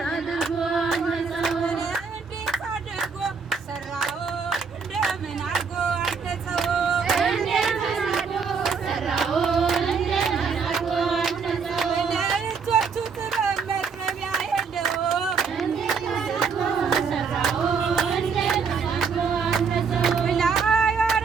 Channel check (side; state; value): left; quieter; 5.6 dB